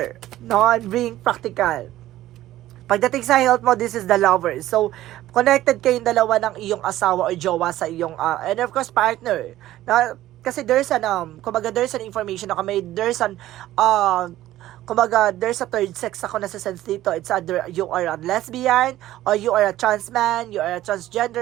no? And being practical. Pagdating sa health mo, this is the lover. So, connected kayong dalawa ng iyong asawa o jowa sa iyong, and of course, partner. Na, kasi there's an, kumbaga, there's an information na there's an, kumbaga, there's a third sex ako na sa sense dito. It's either you are a lesbian, or you are a trans man, you are a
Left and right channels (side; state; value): left; quieter; 14.5 dB